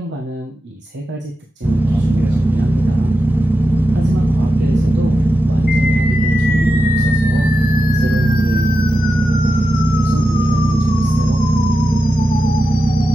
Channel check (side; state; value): both; normal; correlation 0.90